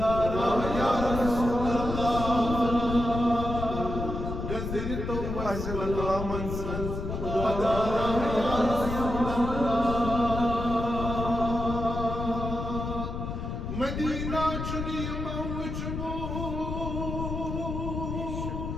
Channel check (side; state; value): left; noise; rumble, 5 dB below the sound